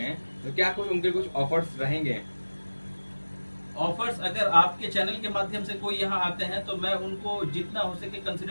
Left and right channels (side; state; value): both; inverted; correlation -1.00